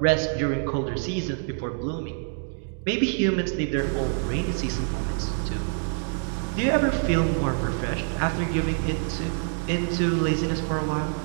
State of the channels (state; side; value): silent; left; 61 dB below the other